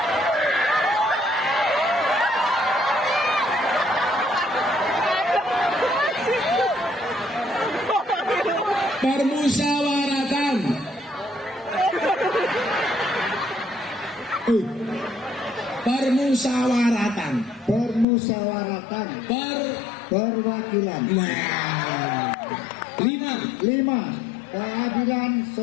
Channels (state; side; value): drops out; right; at 18.1 s